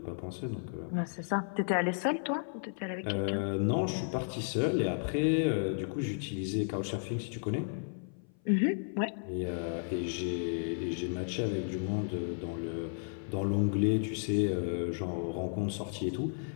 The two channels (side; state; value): right; silent; 55 dB below the other